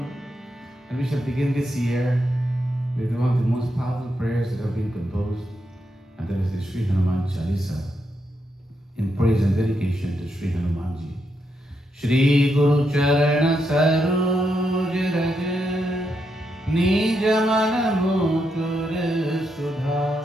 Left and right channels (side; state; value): both; normal; correlation 0.82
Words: And we shall begin this year with one of the most powerful prayers that have been composed, and that is the Sri Hanuman Chalisa. in praise and dedication to Shri Hanumanji. Shri Guru Charana Saroj Raj Nij Mana Mukur Sudha